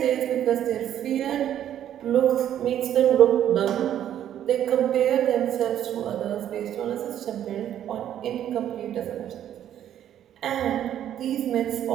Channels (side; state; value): left; quieter; 10.7 dB